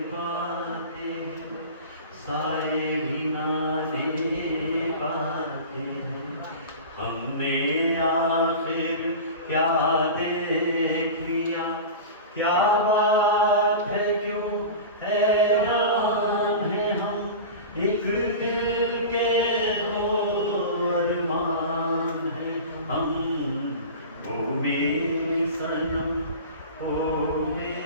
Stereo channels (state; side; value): inverted; both; correlation -0.32